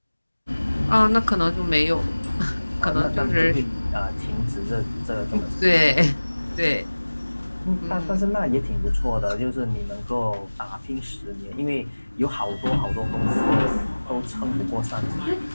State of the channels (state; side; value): inverted; both; correlation -1.00